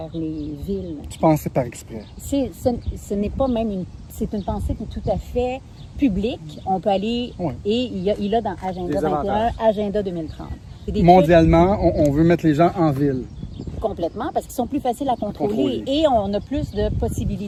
les villes. Tu pensais par exprès? Ce n'est pas même c'est une pensée qui est tout à fait publique. On peut aller, et il a dans Agenda 21, Agenda 2030. Mondialement, on veut mettre les gens en ville. Complètement, parce qu'ils sont plus faciles à contrôler. Et on a plus de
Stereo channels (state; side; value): identical; both; correlation 1.00